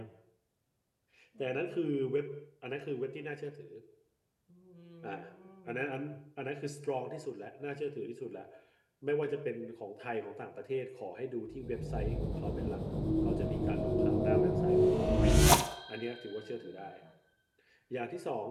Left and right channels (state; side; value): identical; both; correlation 1.00